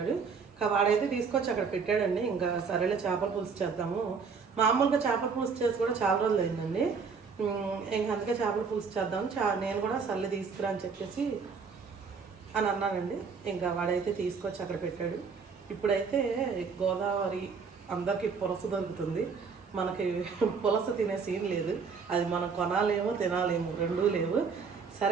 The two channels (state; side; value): quieter; left; 5.5 dB